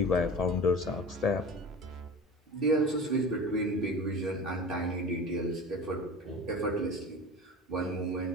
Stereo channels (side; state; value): both; normal; correlation 0.34